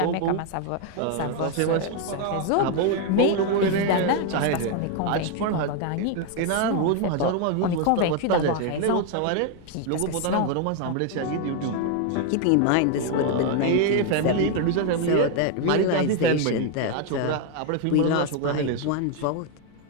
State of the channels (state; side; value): different; both; correlation 0.01